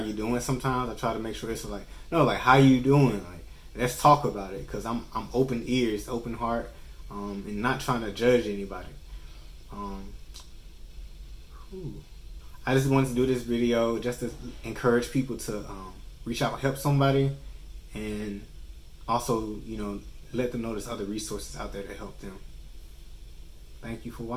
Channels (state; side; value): identical; both; correlation 1.00